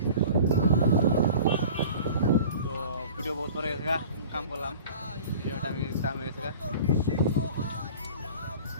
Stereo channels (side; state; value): both; inverted; correlation -0.42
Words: তো ভিডিও বহুত পরে গেছে কাম করলাম ভিডিওটা আমি টাইম হয়ে গেছে